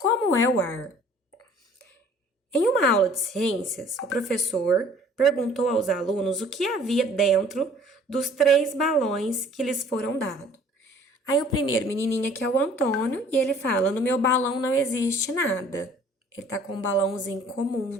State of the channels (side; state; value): both; normal; correlation 0.53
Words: é o ar? Em uma aula de ciências, o professor perguntou aos alunos o que havia dentro dos 3 balões que lhes foram dados. Aí o primeiro menininho aqui é o Antônio e ele fala: no meu balão não existe nada. Ele tá com um balãozinho comum